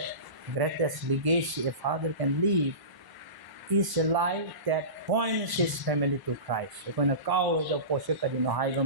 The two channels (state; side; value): late; left; 1.0 ms